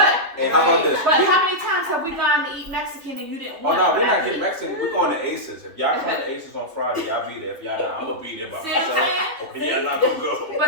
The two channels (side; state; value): left; late; 3.0 ms